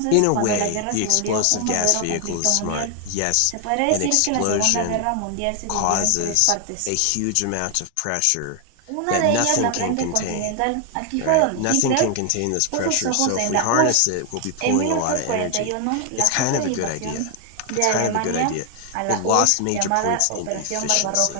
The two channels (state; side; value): different; both; correlation 0.00